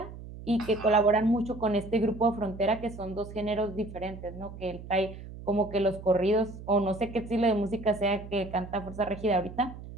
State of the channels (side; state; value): right; noise; hum, 13 dB below the sound